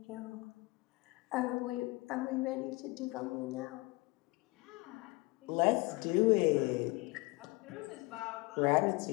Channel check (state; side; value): quieter; right; 24.0 dB